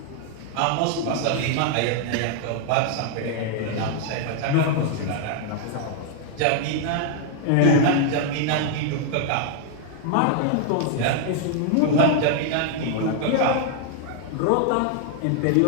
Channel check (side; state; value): both; different; correlation 0.00